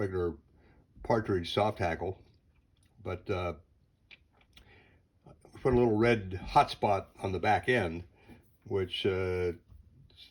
partridge soft hackle, but we put a little red hot spot on the back end, which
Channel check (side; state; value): both; identical; correlation 1.00